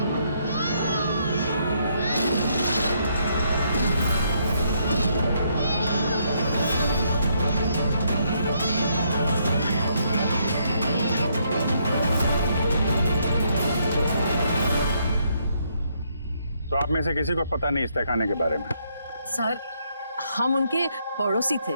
तो आप में से किसी को पता नहीं इस तहखाने के बारे में? सर हम उनके पड़ोसी थे,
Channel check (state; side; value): inverted; both; correlation -0.73